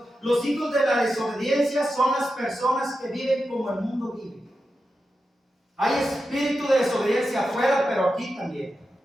Los hijos de la desobediencia son las personas que viven como el mundo vive. Hay espíritu de desobediencia afuera, pero aquí también.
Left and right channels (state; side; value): normal; both; correlation 0.90